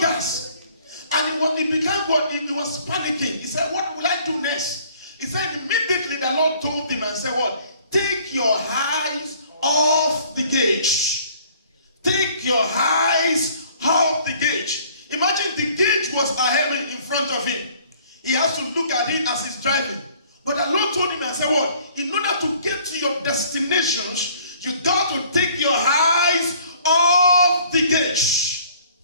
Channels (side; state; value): both; inverted; correlation -0.57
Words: gas. And he became what? He was panicking. He said, what will I do next? He said, immediately the Lord told him and said, what? Take your eyes off the gauge. Take your eyes off the gauge. Imagine the gauge was ahead in front of him. He has to look at it as he's driving. But the Lord told him and said, what? In order to get to your destinations, you got to take your eyes off the gauge.